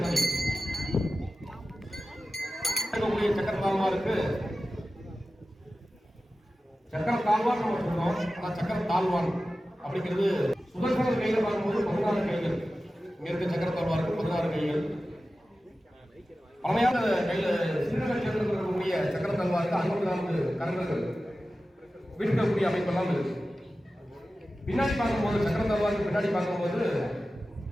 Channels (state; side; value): normal; both; correlation 0.94